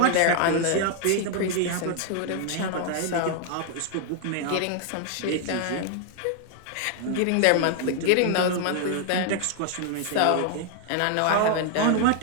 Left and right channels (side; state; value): both; different; correlation 0.00